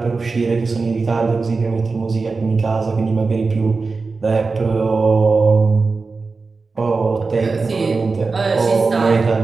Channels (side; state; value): left; quieter; 4.2 dB